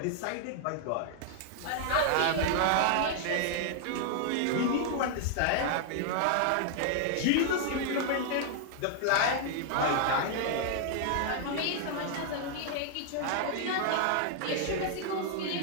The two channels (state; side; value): different; both; correlation 0.00